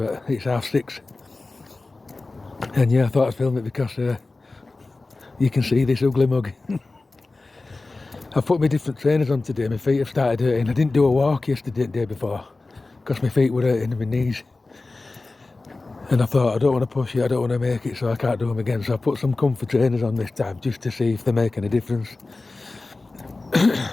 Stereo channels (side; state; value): right; quieter; 3.4 dB